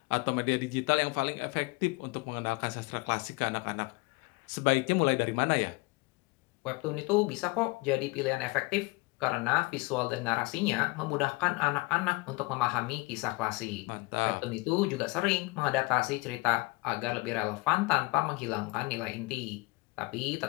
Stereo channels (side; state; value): right; quieter; 24.9 dB